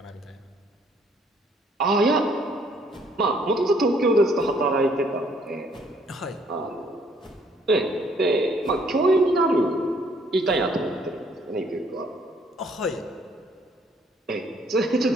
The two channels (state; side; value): normal; both; correlation 0.64